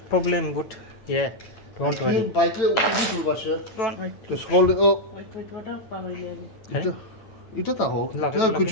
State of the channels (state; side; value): late; right; 9.1 ms